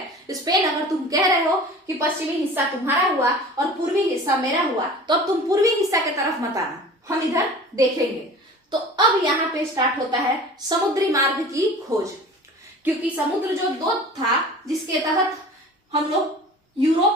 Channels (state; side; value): normal; both; correlation 0.41